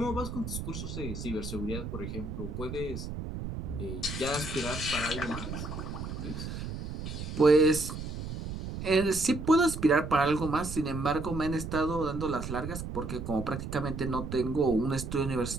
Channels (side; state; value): right; noise; rumble, 7 dB below the sound